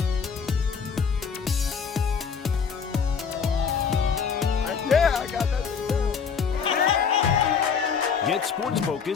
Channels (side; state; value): right; quieter; 6.3 dB